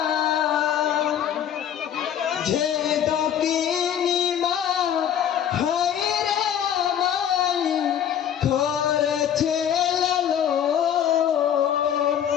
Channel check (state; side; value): quieter; right; 9.5 dB